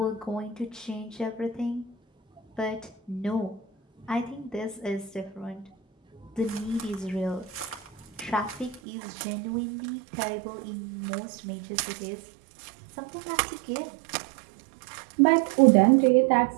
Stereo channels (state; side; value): drops out; left; at 8.8 s